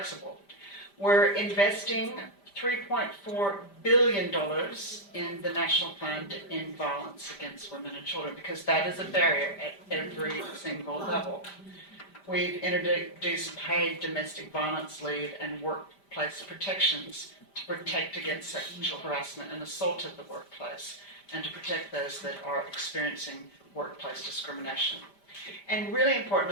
We're investing $3.4 billion in the National Plan to End Violence Against Women and Children, because that is a barrier at every single level. We've introduced paid domestic violence leave and workplace protections to protect against sexual harassment and assault at the workplace, and to protect those that are experiencing workplace discrimination. And really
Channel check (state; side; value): late; right; 5.0 ms